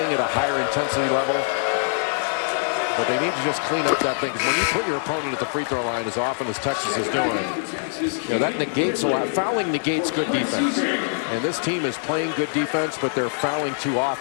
at a higher intensity level. But they need to just clean up that thing. When you put your opponent at the free throw line as often as Texas is doing, that negates a lot. Fouling negates good defense. And this team is playing good defense, but they're fouling too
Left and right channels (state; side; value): silent; right; digital silence